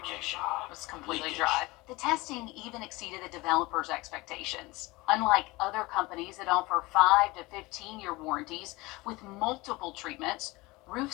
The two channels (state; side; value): quieter; right; 22.3 dB